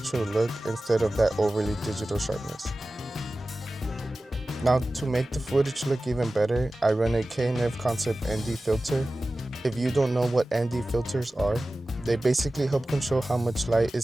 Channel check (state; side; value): normal; both; correlation 0.96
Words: look instead of that overly digital sharpness. Now to make the footage look even better, I run a K&F Concept ND filter. If you don't know what ND filters are, they basically help control how much light